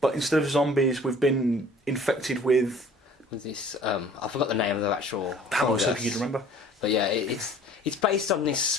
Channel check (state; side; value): normal; both; correlation 0.50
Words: but instead of zombies, we've been infected with. With this, I forgot the name of the actual. Damn, I was fungus. hoping you'd remember. But yeah, it's based on this